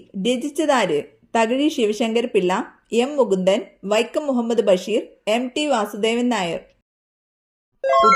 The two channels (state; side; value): identical; both; correlation 1.00